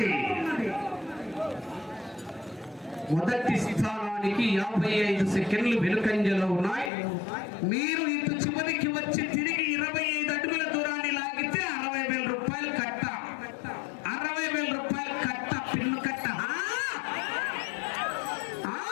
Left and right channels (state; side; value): drops out; right; at 6.9 s